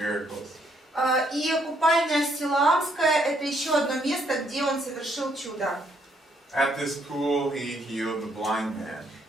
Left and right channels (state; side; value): normal; both; correlation 0.71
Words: И купальня Силаамская — это еще одно место, где он совершил чудо. At this pool, he healed the blind man.